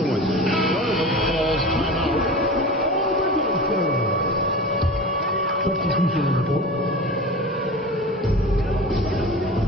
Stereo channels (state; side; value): normal; both; correlation 0.33